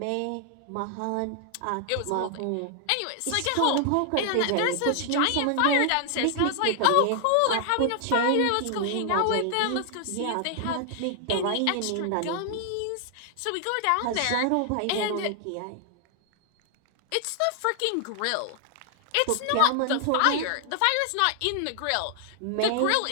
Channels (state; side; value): different; both; correlation 0.00